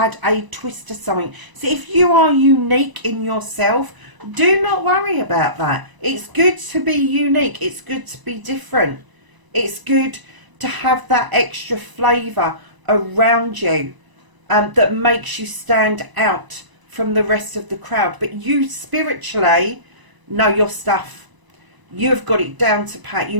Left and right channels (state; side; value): late; left; 1.0 ms